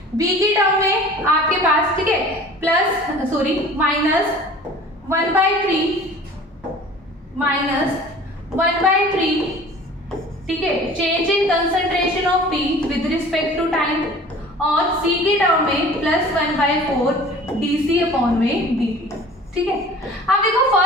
बी की टर्म में आपके पास, ठीक है, -1/3 ठीक है, change in concentration of T with respect to time, और सी की टर्म में +1/4 dC/dt, ठीक है। अब देखो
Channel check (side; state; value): both; normal; correlation 0.45